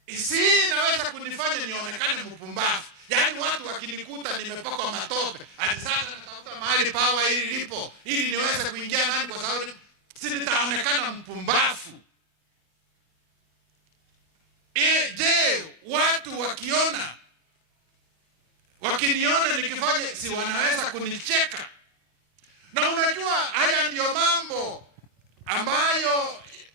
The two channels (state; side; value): late; right; 24 ms